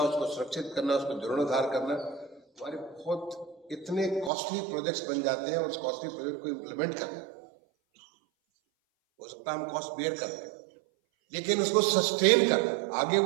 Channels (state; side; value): drops out; left; at 4.3 s